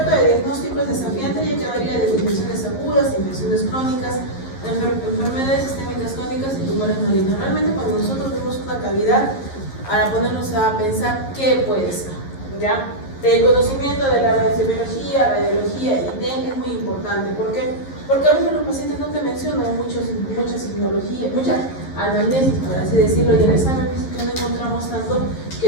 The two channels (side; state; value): right; late; 11 ms